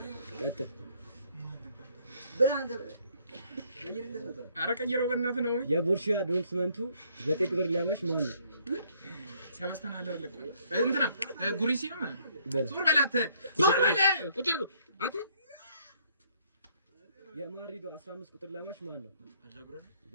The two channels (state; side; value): inverted; both; correlation -0.65